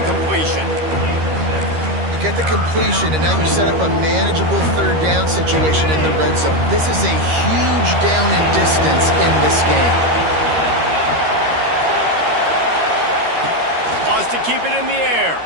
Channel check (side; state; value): left; late; 13 ms